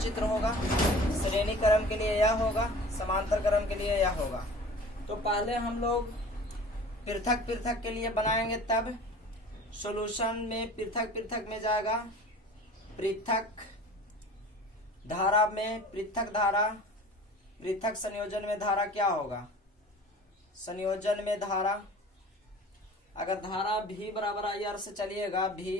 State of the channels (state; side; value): normal; both; correlation 0.43